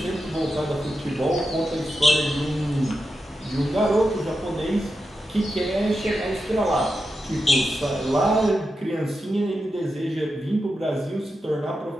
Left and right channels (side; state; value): both; normal; correlation 0.88